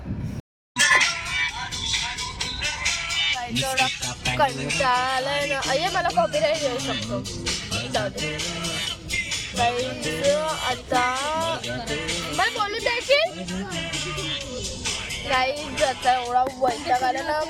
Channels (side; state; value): both; identical; correlation 1.00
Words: कंटाळाय ना. अय्या मला कॉपीराईट येऊ शकतो. जाऊ दे आता मला बोलू द्यायची. काहीच आता एवढा वैताग आला ना.